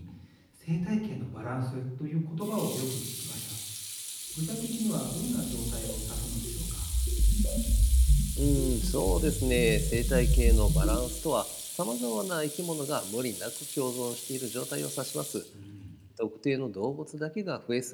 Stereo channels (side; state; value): both; identical; correlation 1.00